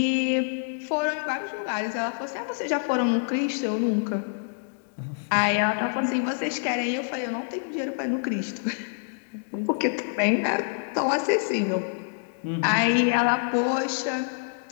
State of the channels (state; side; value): silent; right; digital silence